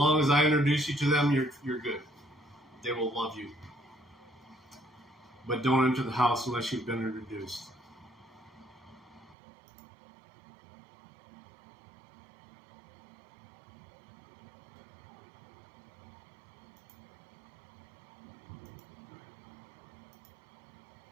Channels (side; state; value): left; drops out; at 9.3 s